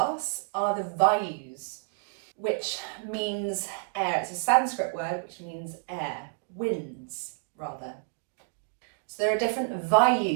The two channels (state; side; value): silent; left; 58 dB below the other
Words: are the vayus, which means air. It's a Sanskrit word which means air, winds rather. So there are different